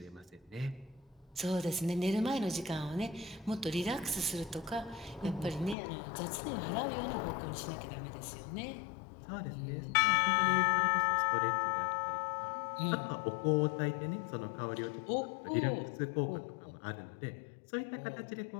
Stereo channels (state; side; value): drops out; right; at 5.8 s